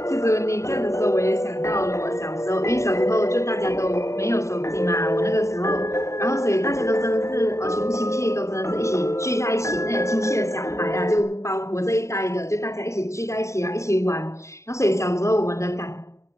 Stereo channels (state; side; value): late; right; 0.14 ms